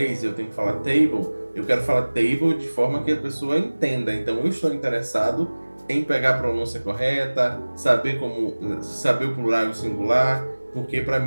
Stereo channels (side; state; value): both; inverted; correlation -1.00